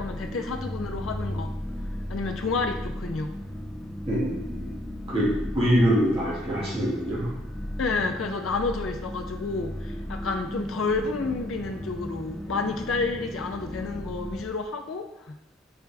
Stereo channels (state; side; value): normal; both; correlation 0.62